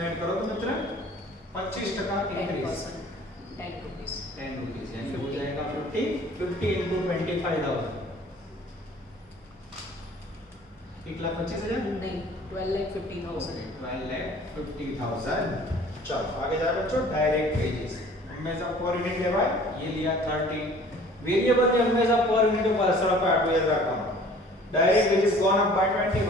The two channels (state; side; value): normal; both; correlation 0.50